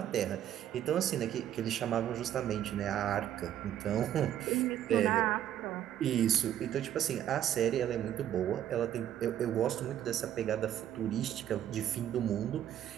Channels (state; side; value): quieter; left; 11.1 dB